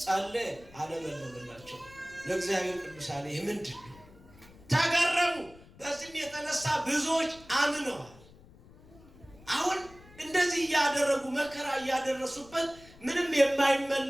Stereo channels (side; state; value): left; noise; rumble, 23 dB below the sound